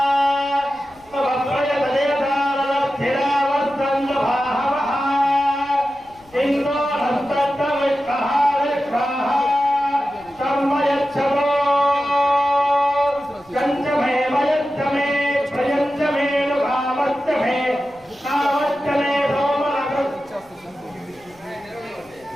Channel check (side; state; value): left; noise; rumble, 29 dB below the sound